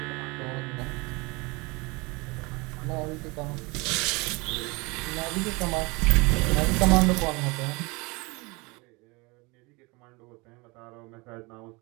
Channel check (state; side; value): quieter; left; 26.3 dB